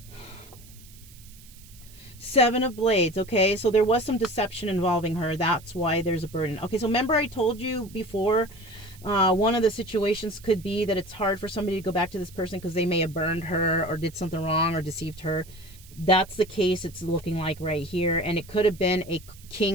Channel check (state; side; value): noise; right; hiss, 22 dB below the sound